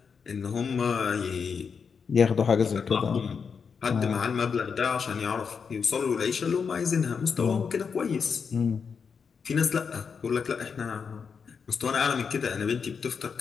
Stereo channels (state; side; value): quieter; right; 6.0 dB